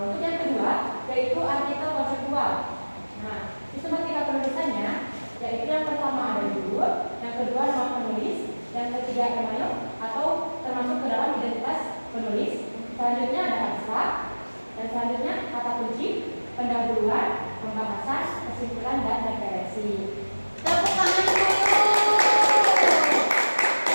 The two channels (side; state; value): both; inverted; correlation -1.00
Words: untuk yang kedua yaitu artikel konseptual. Nah, sistematika penulisannya yaitu yang pertama ada judul, yang kedua nama penulis, yang ketiga email atau termasuk ke dalam identitas penulis. Selanjutnya ada abstrak, dan selanjutnya kata kunci, pendahuluan, pembahasan, kesimpulan, dan referensi. Tepuk tangan dulu.